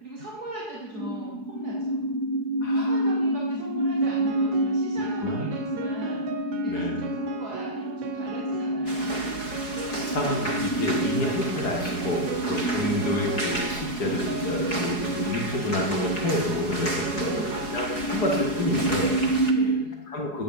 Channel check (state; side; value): late; right; 4.7 ms